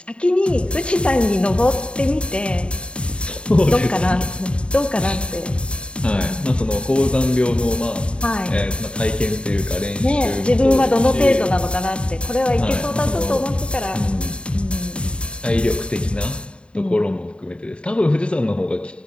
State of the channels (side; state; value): right; late; 0.055 ms